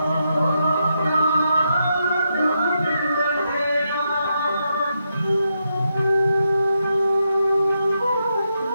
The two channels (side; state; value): both; inverted; correlation -0.83